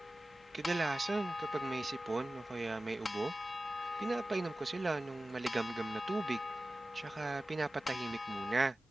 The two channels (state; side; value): normal; both; correlation 0.96